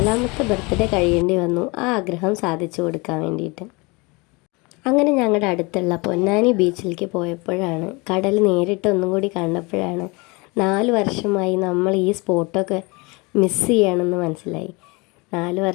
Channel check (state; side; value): quieter; right; 26.9 dB